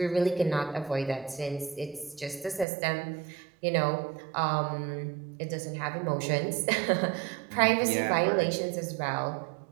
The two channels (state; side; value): drops out; left; at 2.7 s